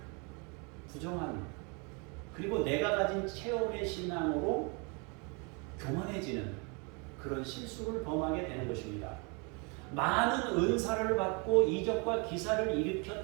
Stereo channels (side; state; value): left; quieter; 32.8 dB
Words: 부정하는, 그리고 내가 가진 체험의 신앙으로 교만해지는 그런 실수를 범하게 되는 것입니다. 많은 은사를 받고 이적과 기사를